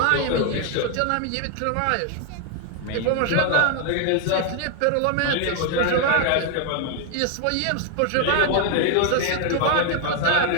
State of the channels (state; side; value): different; both; correlation 0.00